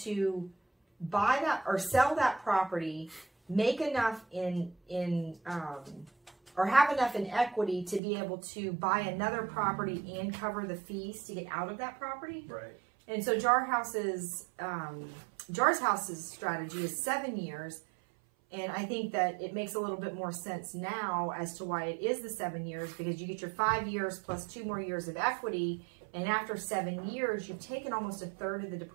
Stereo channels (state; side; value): drops out; left; at 8.0 s